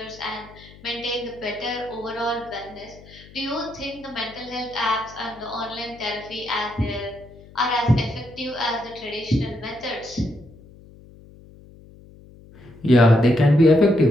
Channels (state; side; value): noise; left; hum, 22 dB below the sound